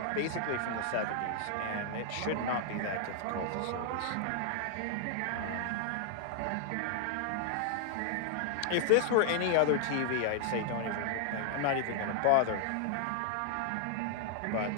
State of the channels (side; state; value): both; different; correlation 0.00